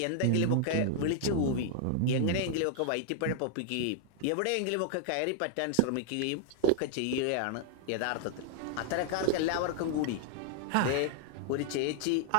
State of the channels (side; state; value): both; different; correlation -0.01